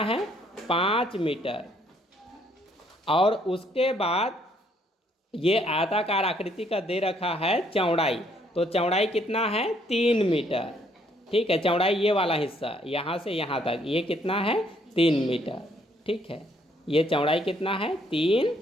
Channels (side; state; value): both; normal; correlation 0.67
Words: है 5 मीटर, और उसके बाद ये आयताकार आकृति का दे रखा है चौड़ाई, तो चौड़ाई कितना है 3 मीटर। ठीक है, चौड़ाई ये वाला हिस्सा यहाँ से यहाँ तक ये कितना है 3 मीटर। ठीक है, ये चौड़ाई कितना है 3